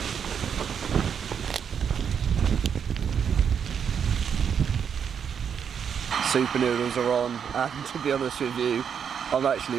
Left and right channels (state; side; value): quieter; left; 7.5 dB